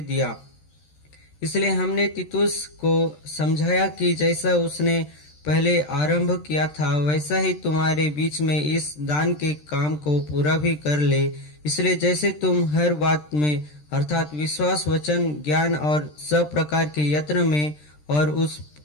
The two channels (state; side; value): late; right; 13 ms